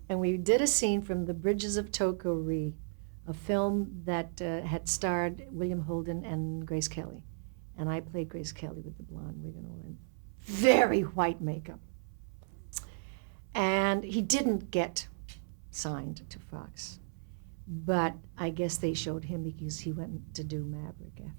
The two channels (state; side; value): silent; left; 55 dB below the other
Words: And we did a scene from The Bridges of Toko-Ri, a film that had starred William Holden and Grace Kelly. And I played Grace Kelly with the blonde wig and all, and very white makeup. And he didn't get signed to Fox. But I guess they showed him because he went to do Maverick